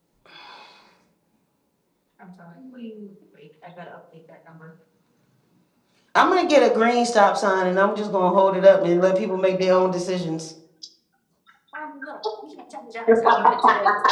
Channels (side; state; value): both; identical; correlation 1.00